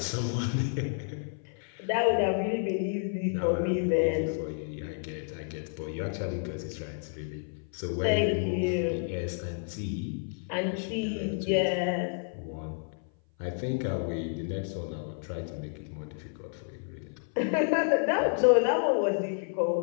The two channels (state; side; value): silent; right; 56 dB below the other